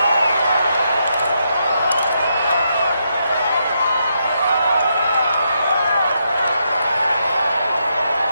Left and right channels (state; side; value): inverted; both; correlation -0.80